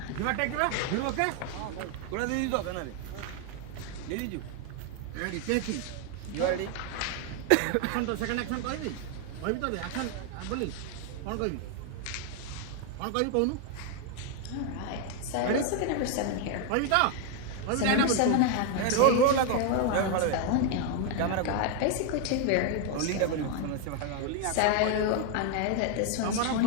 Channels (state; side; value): different; both; correlation 0.01